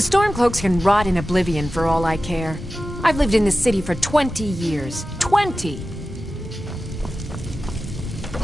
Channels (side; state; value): both; normal; correlation 0.94